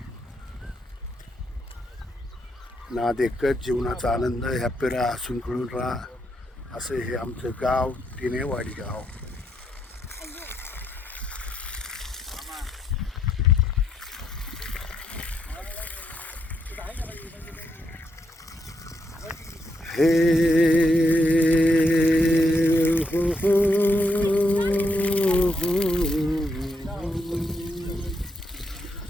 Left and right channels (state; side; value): normal; both; correlation 0.79